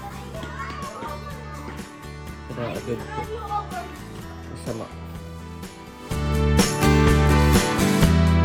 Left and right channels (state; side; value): identical; both; correlation 1.00